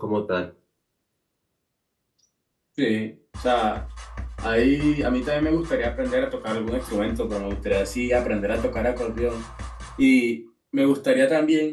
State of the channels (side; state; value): both; identical; correlation 1.00